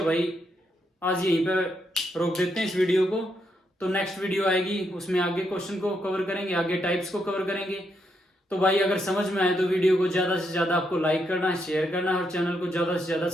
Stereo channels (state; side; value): normal; both; correlation 0.79